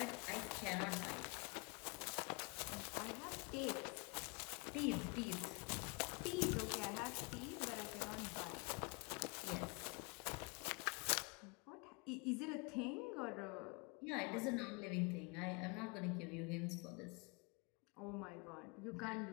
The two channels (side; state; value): right; quieter; 30.2 dB